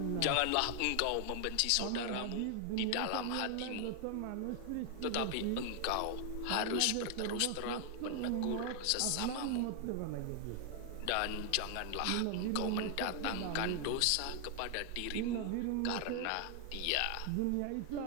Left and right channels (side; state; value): both; different; correlation 0.00